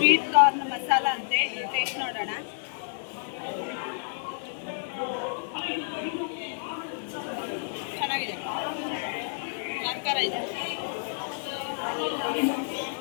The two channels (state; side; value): silent; right; digital silence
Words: ಕಾರ್ನ್ ಮಸಾಲ ಅಂತೆ, ಟೇಸ್ಟ್ ನೋಡೋಣ. ಚೆನ್ನಾಗಿದೆ, ಖಾರ ಇದೆ.